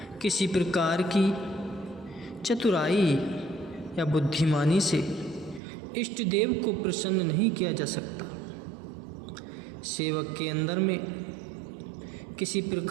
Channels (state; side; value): drops out; left; at 5.6 s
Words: किसी प्रकार की चतुराई या बुद्धिमानी से इष्ट देव को प्रसन्न नहीं किया जा सकता। सेवक के अंदर में किसी